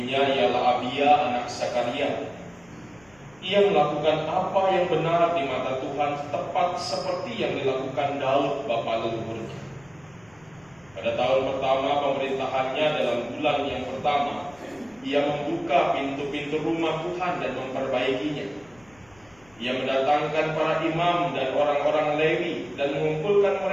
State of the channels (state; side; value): noise; left; rumble, 29 dB below the sound